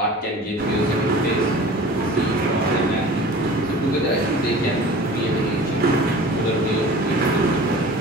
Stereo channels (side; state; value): both; normal; correlation 0.41